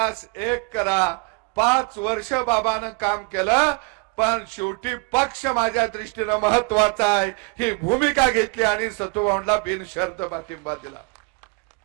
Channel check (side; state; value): left; quieter; 32.3 dB